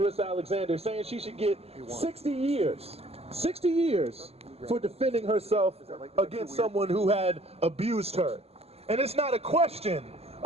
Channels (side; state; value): left; late; 0.29 ms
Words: Alexander, saying she should get 60 years for defending herself against someone who had abused her. And it's not a question